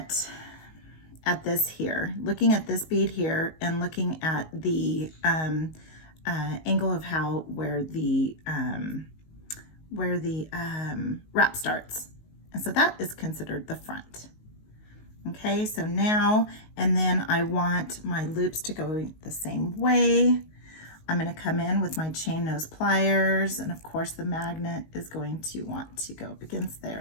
this here, looking at this bead here, and looking at the angle of where the wrap starts. And so that is considered the front. Okay, so now, and then I want my loops to go the same way. I'm going to come in with my chain nose pliers, and of course the magnet is going to want to go up against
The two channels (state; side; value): late; right; 19 ms